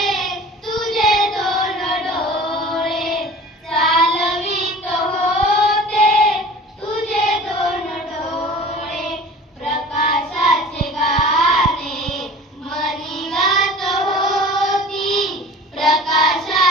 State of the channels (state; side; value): normal; both; correlation 0.42